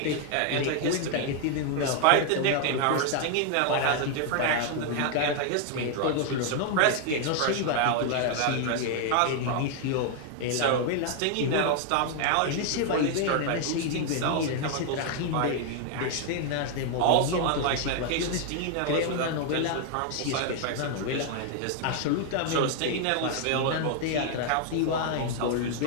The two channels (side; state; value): both; different; correlation 0.00